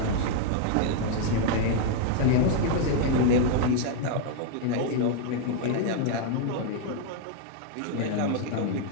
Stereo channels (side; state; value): both; different; correlation 0.00